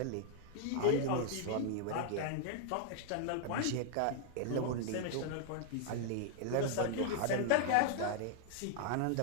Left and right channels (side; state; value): both; different; correlation 0.00